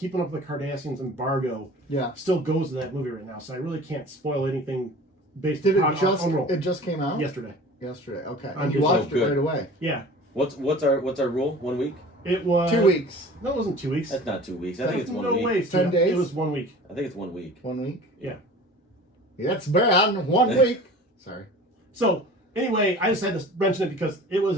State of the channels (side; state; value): both; normal; correlation 0.42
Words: Up with the Cardassians embargo, still goes to that movie right now. So I really can't spoil anything based on it just came out yesterday. Okay, And you watched it right away. Yeah. What's our rule? 1 week? It was 2 weeks. No, it wasn't 2 weeks. That's not 2 weeks. I think it's 1 week. No way. 10 days. It was 1 week. I think it's 1 week. 1 week. Yeah. That's bad. 1 week. Sorry. So anyway, I just had to mention it because it was